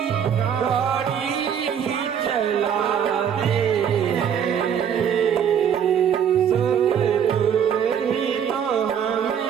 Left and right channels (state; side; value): quieter; left; 8.3 dB